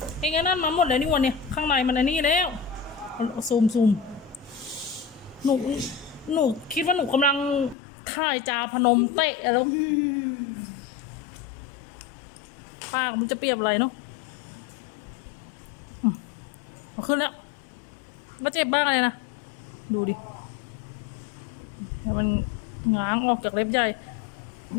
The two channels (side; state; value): right; drops out; at 7.8 s